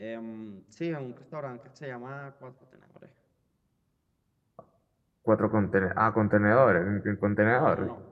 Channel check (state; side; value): identical; both; correlation 1.00